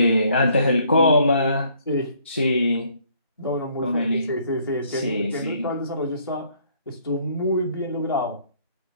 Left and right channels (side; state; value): both; inverted; correlation -0.64